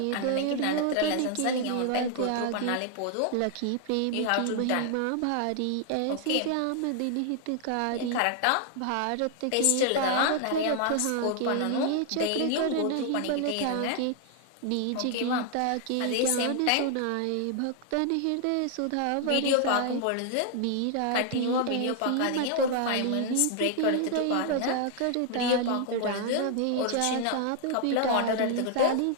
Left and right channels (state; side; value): different; both; correlation 0.00